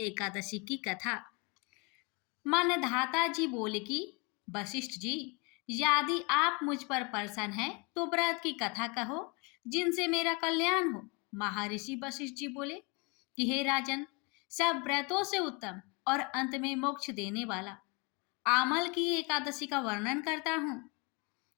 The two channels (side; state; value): right; quieter; 30.2 dB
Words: की कथा। मान्यधाता जी बोले कि वशिष्ठ जी, यदि आप मुझ पर प्रसन्न हैं तो व्रत की कथा कहो जिनसे मेरा कल्याण हो। महर्षि वशिष्ठ जी बोले कि हे राजन, सब व्रतों से उत्तम और अंत में मोक्ष देने वाला आमल की एकादशी का वर्णन करता हूँ।